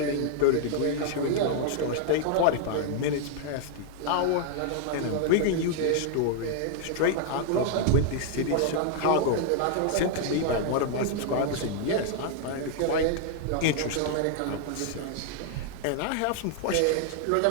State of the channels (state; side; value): different; both; correlation 0.00